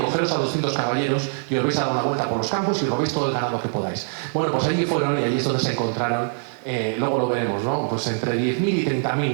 a 200 caballeros y os vais a dar una vuelta por los campos y robéis todo el ganado que podáis. Bueno, pues allí fueron y allí es donde se encontraron, luego lo veremos, ¿no? Pues entre 10.000 y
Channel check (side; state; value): left; silent; digital silence